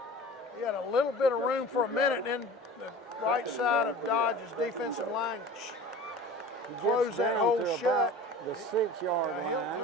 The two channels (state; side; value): normal; both; correlation 0.39